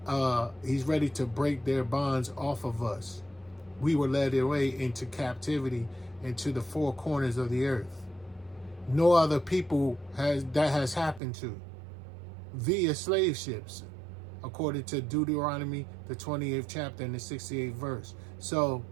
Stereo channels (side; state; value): left; drops out; at 11.2 s